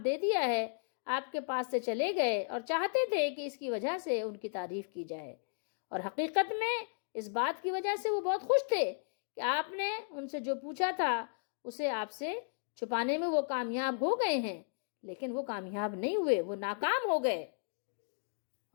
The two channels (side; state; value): right; silent; digital silence